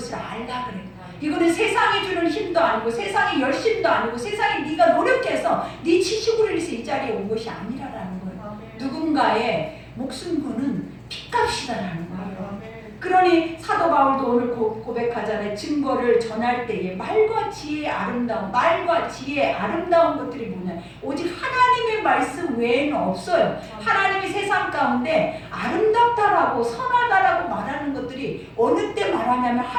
알라 그래요. 이거는 세상이 주는 힘도 아니고 세상의 열심도 아니고 세상에 네가 노력해서 네 지식으로 인해서 이 자리에 온 것이 아니라라는 거예요. 누군가의 목숨 거는 핏값이다라는 거예요. 그러니 사도 바울도 오늘 고백하잖아요. 증거를 전할 때에 말과 지혜의 아름다움, 말과 지혜의 아름다운 것들이 뭐냐? 오직 하나님의 말씀 외에는 없어요. 하나님이 세상 가운데 아름답다라고 선하다라고 말하는 것들이 어느 때 말하냐면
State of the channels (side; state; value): both; identical; correlation 1.00